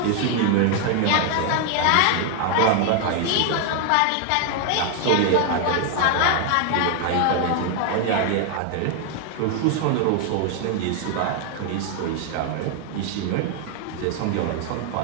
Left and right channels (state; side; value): different; both; correlation 0.00